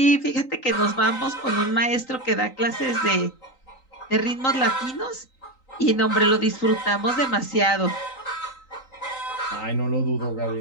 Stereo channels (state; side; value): late; right; 3.9 ms